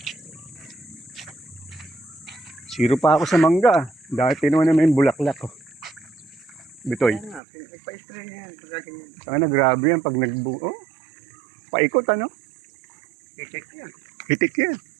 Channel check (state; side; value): drops out; left; at 7.4 s